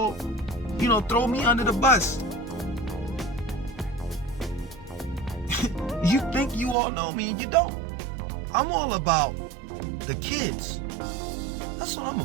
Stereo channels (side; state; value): left; drops out; at 6.8 s